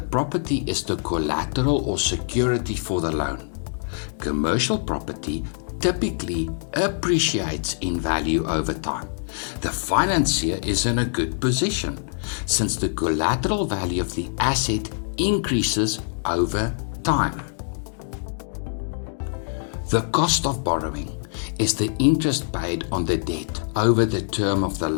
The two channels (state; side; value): silent; right; 62 dB below the other